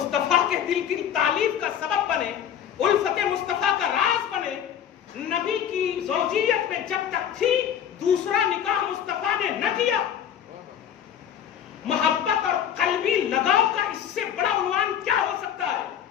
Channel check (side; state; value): right; quieter; 9.3 dB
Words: کے دل کی تعلیف کا سبب بنے، الفت مصطفیٰ کا راز بنے۔ نبی کی زوجیت میں جب تک تھی دوسرا نکاح مصطفیٰ نے نہ کیا۔ محبت اور قلبی لگاؤ کا اس سے بڑا عنوان کیا ہو سکتا